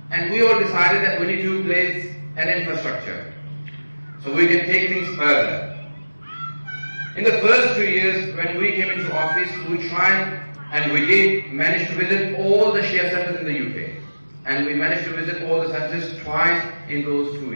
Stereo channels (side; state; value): both; inverted; correlation -1.00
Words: and we all decided that we need to place an infrastructure so we can take things further. In the first 2 years when we came into office, we tried and we did manage to visit all the Shia centers in the UK, and we managed to visit all the centers twice in those 2